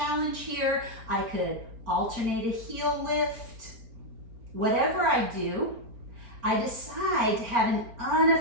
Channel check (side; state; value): left; late; 4.4 ms